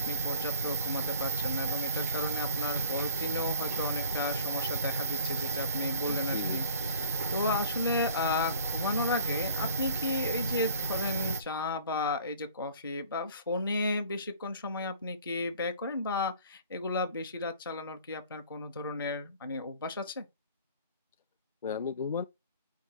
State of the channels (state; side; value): inverted; both; correlation -0.46